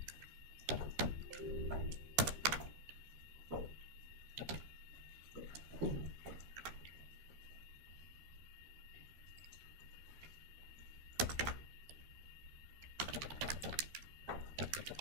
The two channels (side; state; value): left; late; 13 ms